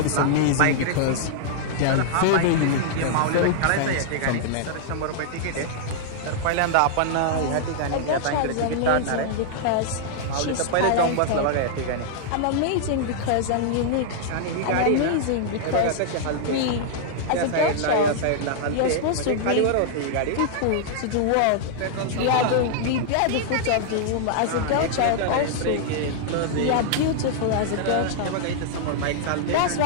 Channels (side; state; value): both; different; correlation -0.01